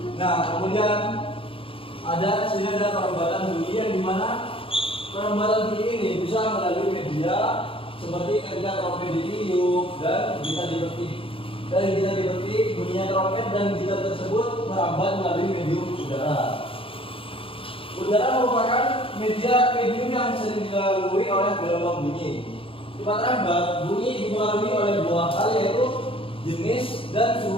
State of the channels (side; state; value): right; late; 0.26 ms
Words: Nah, kemudian sini ada perambatan bunyi yang dimana perambatan bunyi ini bisa melalui media seperti ketika trompet ditiup dan gitar dipetik. Dan gitar dipetik, bunyinya trompet dan gitar tersebut merambat melalui medium udara. Udara merupakan medium yang sering dilalui oleh gelombang bunyi. Sifat rambat bunyi dipengaruhi oleh 2 hal, yaitu jenis dan